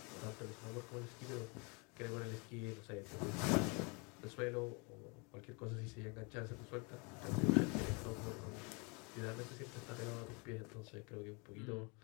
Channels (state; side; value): quieter; right; 31.4 dB